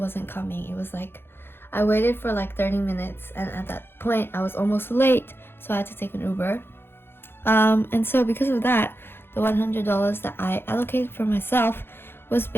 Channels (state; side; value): late; right; 0.11 ms